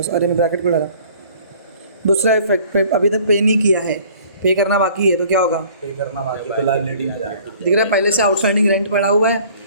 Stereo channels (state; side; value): inverted; both; correlation -0.52